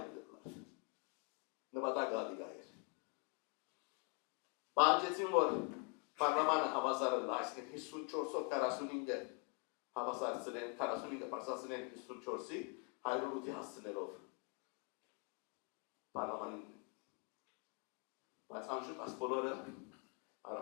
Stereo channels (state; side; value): quieter; right; 33.4 dB